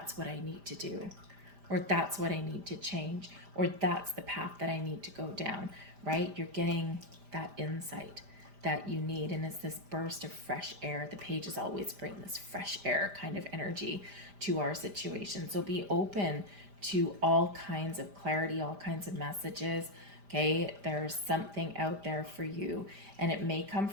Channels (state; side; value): late; left; 5.0 ms